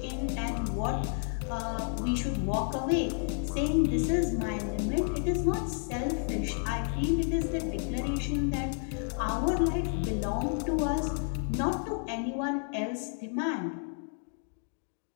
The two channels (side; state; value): right; silent; 57 dB below the other